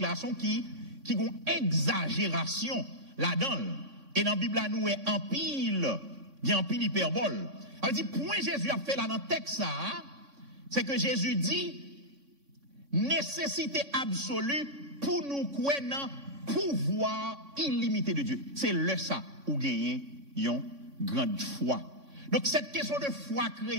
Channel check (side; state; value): left; late; 3.6 ms